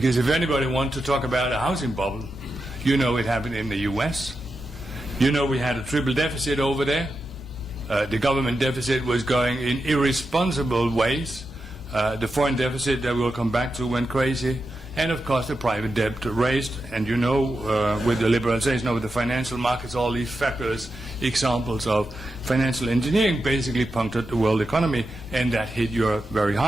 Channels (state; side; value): normal; both; correlation 0.89